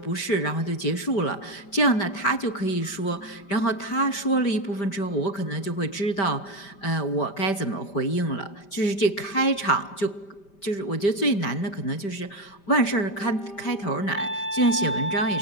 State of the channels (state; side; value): late; right; 5.1 ms